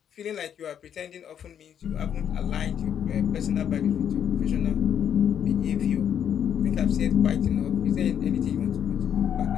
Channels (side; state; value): right; quieter; 9.0 dB